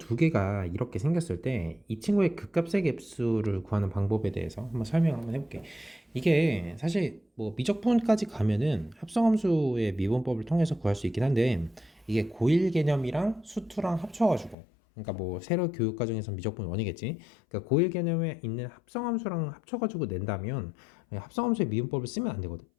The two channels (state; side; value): drops out; right; at 14.6 s